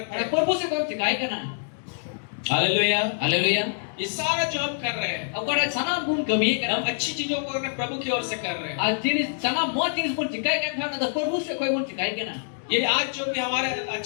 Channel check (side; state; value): right; silent; digital silence